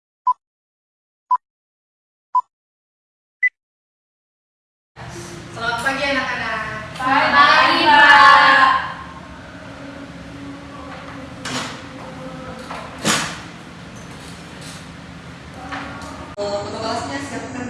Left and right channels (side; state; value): both; identical; correlation 1.00